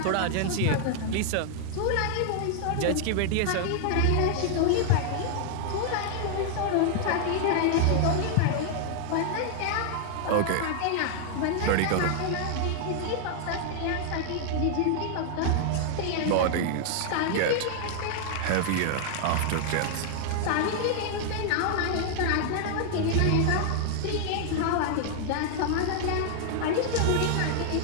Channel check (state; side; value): different; both; correlation 0.00